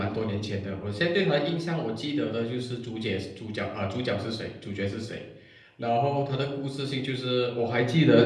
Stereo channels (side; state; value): both; identical; correlation 1.00